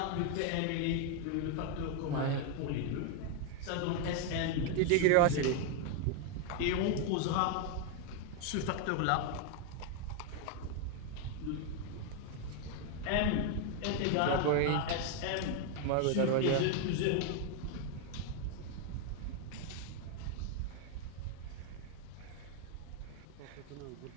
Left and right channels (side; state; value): both; different; correlation 0.01